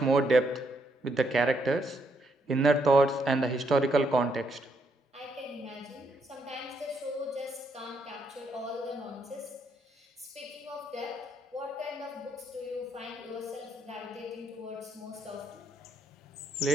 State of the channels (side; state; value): both; normal; correlation 0.75